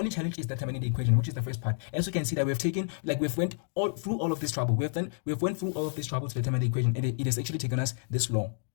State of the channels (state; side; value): silent; right; digital silence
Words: challenge is determining the equation, which is the first part. As you can see that we've went through all of this trouble. We've went through all of this trouble to determine the equation, and it has actually taken us this long.